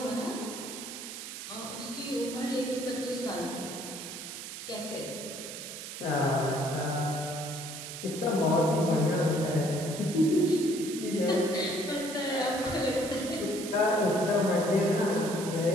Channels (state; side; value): noise; right; hiss, 9 dB below the sound